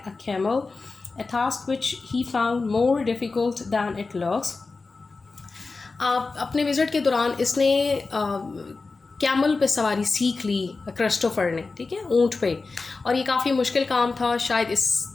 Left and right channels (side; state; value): right; quieter; 4.0 dB